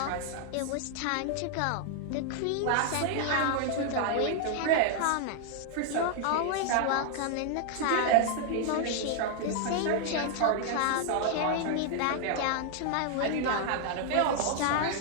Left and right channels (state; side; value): different; both; correlation 0.00